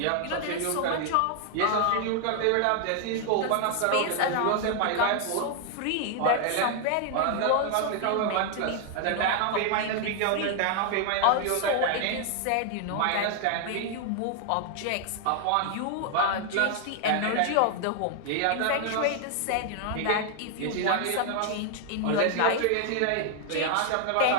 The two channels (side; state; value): both; different; correlation 0.00